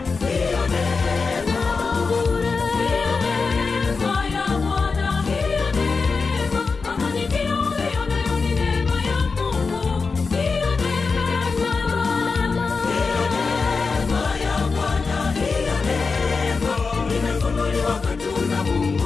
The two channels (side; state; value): right; quieter; 4.6 dB